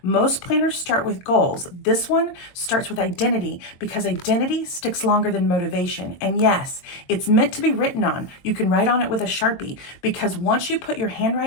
Most planners start with goals. This one starts with identity because identity sticks longer than motivation. And yes, it's meant to be written on. You can write on it with a Sharpie because once you put your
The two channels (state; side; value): late; right; 22 ms